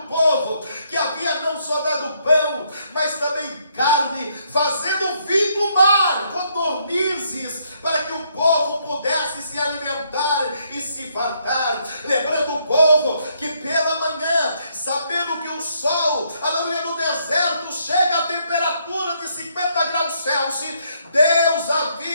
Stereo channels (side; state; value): both; inverted; correlation -0.72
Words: povo, que havia não só dado pão, mas também carne, fazendo vir do mar codornizes, para que o povo pudesse se alimentar e se fartar. Lembrando o povo que pela manhã, sabendo que o sol, aleluia, no deserto chega a temperatura de 50 graus Celsius, Deus